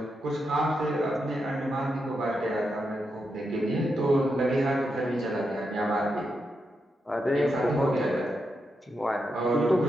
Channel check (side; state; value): both; normal; correlation 0.85